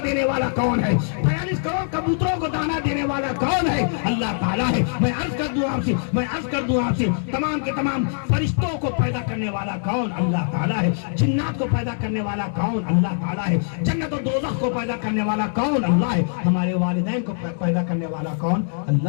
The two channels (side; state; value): right; silent; digital silence